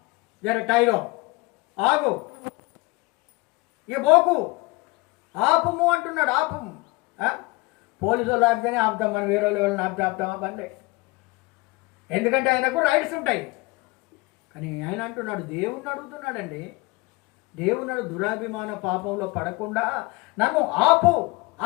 జర టైరో, ఆగు, ఇక పోకు, ఆపుము అంటున్నాడు. ఆపుము. పోలీసు వాళ్ళు ఆపితేనే ఆపుతాం, మనం వేరే వాళ్ళని ఆపుతామా? పనిలే. ఎందుకంటే ఆయనకు రైట్స్ ఉంటాయి. కానీ ఆయన అంటున్నాడు, దేవుణ్ణి అడుగుతున్నాడండి. దేవుడు దురాభిమాన పాపంలో పడకుండా నన్ను ఆపు. ఆ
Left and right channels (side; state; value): right; quieter; 24.1 dB